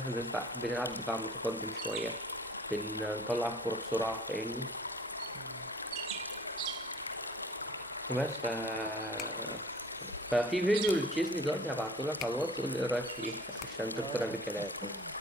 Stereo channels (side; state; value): both; normal; correlation 0.49